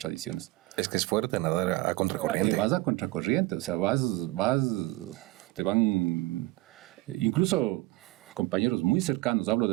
Es que es fuerte nadar a contracorriente. Vas a contracorriente, o sea, te van, incluso compañeros muy cercanos, hablo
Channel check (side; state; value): left; quieter; 20.0 dB